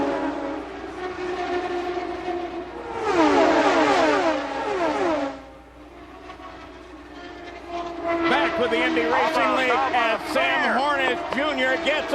Back with the Indy Racing League as Sam Hornish Jr. gets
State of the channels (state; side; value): identical; both; correlation 1.00